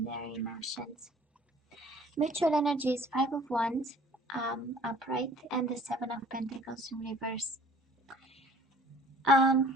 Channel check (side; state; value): both; normal; correlation 0.52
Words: their emotions. Mutual energy is Five of Wands, upright, and the Seven of Pentacles in reverse.